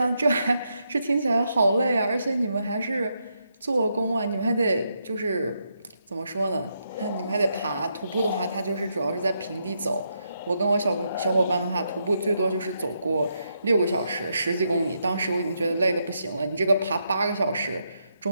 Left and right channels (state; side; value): inverted; both; correlation -0.80